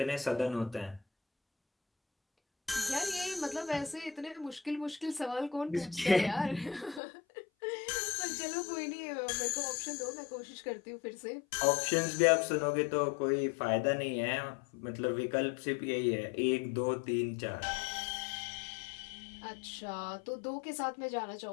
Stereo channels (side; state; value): right; drops out; at 7.0 s